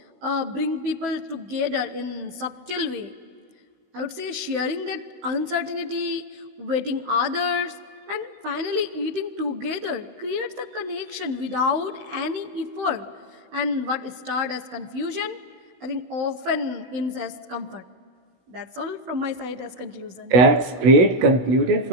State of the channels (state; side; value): late; left; 16 ms